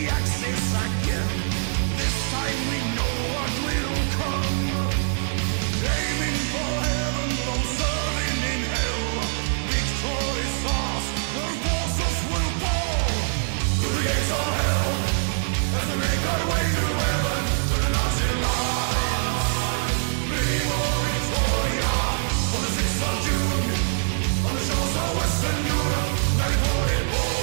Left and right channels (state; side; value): silent; left; 62 dB below the other